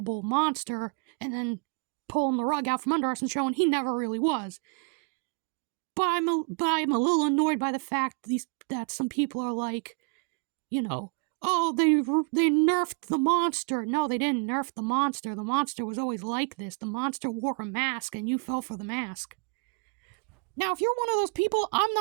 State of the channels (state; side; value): quieter; left; 33.6 dB